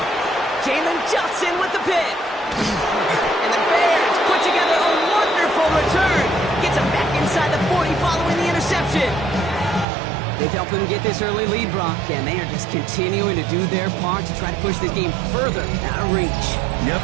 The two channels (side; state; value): left; drops out; at 9.9 s